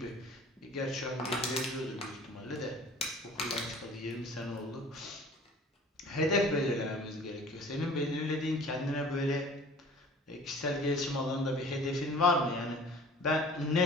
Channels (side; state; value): both; normal; correlation 0.47